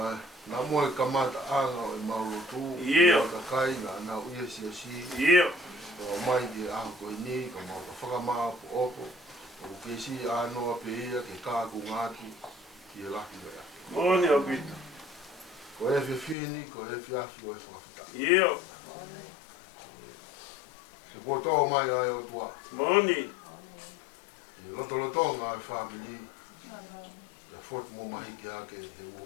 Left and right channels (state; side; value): drops out; right; at 16.4 s